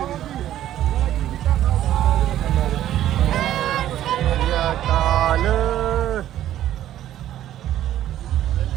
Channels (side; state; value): left; quieter; 12.3 dB